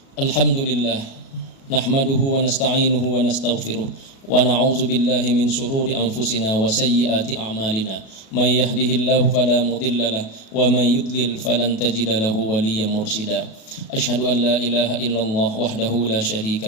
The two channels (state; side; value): late; right; 37 ms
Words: Alhamdulillah, nahmaduhu wa nasta'inuhu wa nastaghfiruh wa na'udzu billahi min shururi anfusina wa sayyiati a'malina. May yahdihillahu fala mudilla lahu wa may yudlil falan tajida lahu waliyyan mursyida. Asyhadu an la ilaha illallah wahdahu la